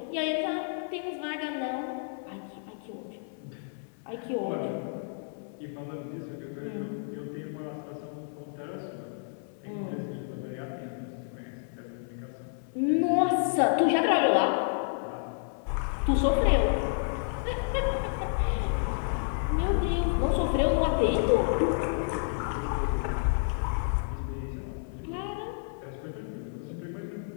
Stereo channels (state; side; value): silent; right; 58 dB below the other